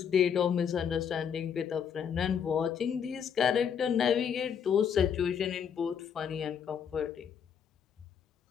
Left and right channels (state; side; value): quieter; right; 7.7 dB